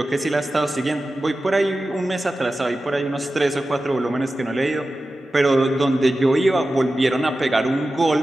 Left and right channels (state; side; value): normal; both; correlation 0.94